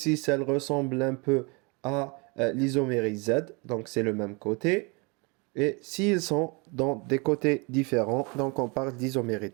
elle ressemble un peu à l'isomérie Z. Donc, c'est le même côté. Et s'ils sont dans des côtés différents, donc on parle d'isomérie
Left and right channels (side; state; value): left; quieter; 29.9 dB